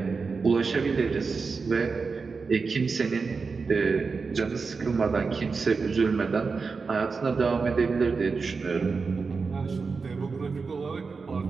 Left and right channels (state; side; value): quieter; left; 4.7 dB